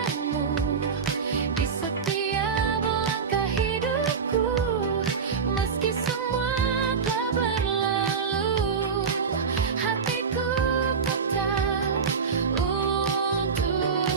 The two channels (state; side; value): quieter; left; 5.8 dB